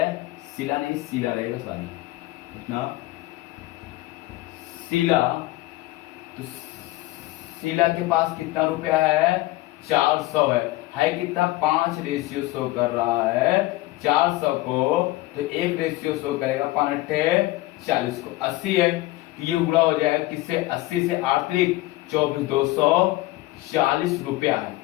शीला नहीं शीला रहेगा, सॉरी इतना शीला, तो शीला के पास कितना रुपया है? 400 है कितना? 5 शो कर रहा है 400 को, तो 1 शो करेगा 5×8 = 40 को 80 है। ये गुणा हो जाएगा किससे? 80 से 8 × 24 240 रुपया है।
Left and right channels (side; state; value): right; quieter; 19.0 dB